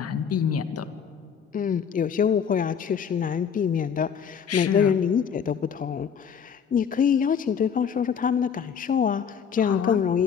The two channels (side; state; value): right; quieter; 7.3 dB